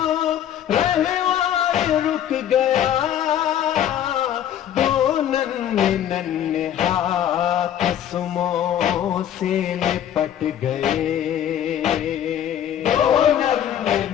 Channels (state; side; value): quieter; right; 10.4 dB